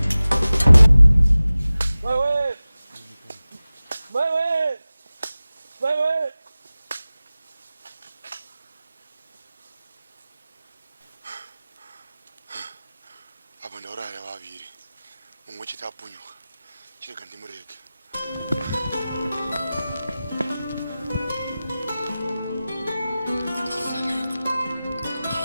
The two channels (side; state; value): both; inverted; correlation -0.97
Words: apa ndauraya vaviri mumwe chete apunyuka chirega ndimurege.